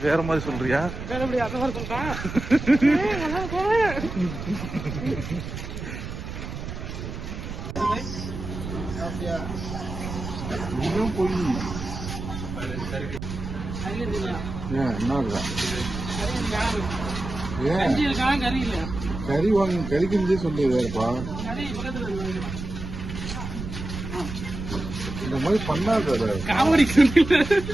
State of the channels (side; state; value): right; noise; rumble, 7 dB below the sound